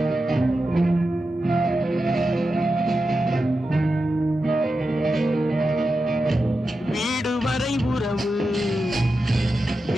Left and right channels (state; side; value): normal; both; correlation 0.90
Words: வீடு வரை உறவு